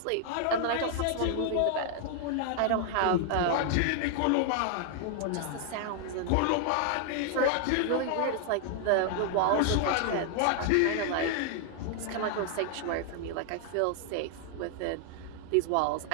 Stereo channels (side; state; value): both; different; correlation 0.00